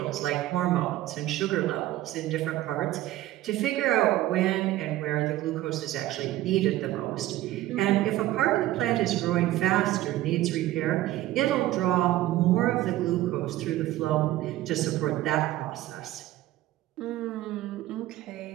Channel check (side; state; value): left; quieter; 15.1 dB